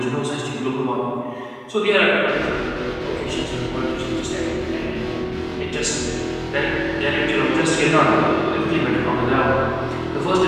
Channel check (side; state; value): both; identical; correlation 1.00